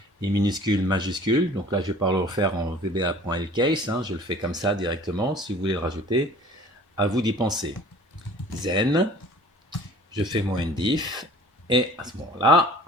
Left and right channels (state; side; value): normal; both; correlation 0.48